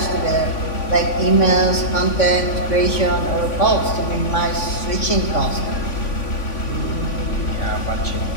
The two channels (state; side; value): late; right; 3.5 ms